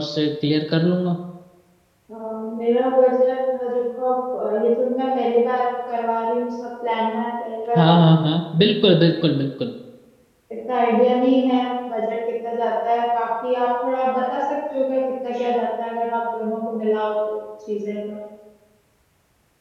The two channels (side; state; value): both; identical; correlation 1.00